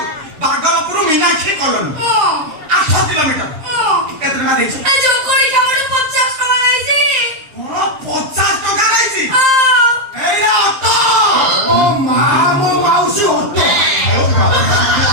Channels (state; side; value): late; left; 7.6 ms